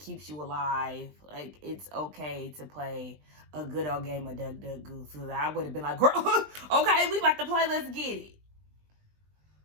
you alive. Like, it's okay to play a good old game of Duck, Duck, Goose. So I would have been like, girl, okay, we about to play. Let's get it.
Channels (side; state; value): left; late; 20 ms